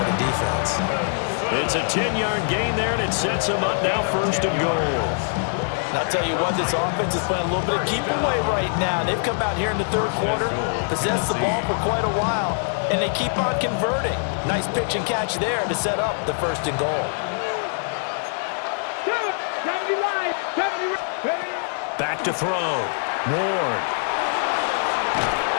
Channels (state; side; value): silent; right; digital silence